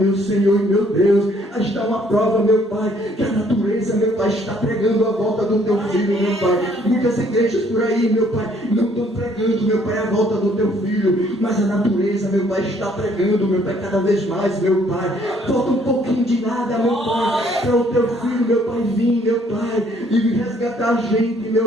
Senhor e meu Deus, aí está uma prova, meu Pai, que a natureza, meu Pai, está pregando a volta do teu filho, meu Pai. Muitas igrejas por aí, meu Pai, não estão pregando, meu Pai, a volta do teu filho, mas a natureza, meu Pai, está pregando, meu Pai, cada vez mais, meu Pai. Falta um pouquinho de nada, meu Pai, para o teu filho, meu Pai, vir, meu Pai, e resgatar a gente,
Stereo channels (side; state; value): both; normal; correlation 0.63